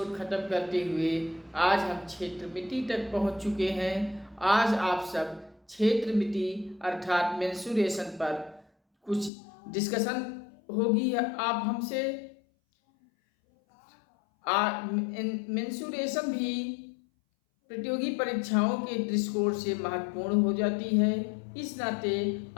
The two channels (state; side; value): drops out; right; at 9.3 s